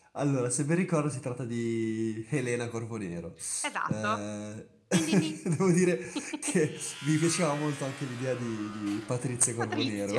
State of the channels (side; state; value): both; identical; correlation 1.00